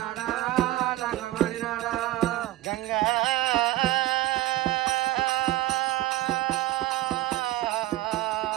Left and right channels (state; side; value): quieter; left; 16.4 dB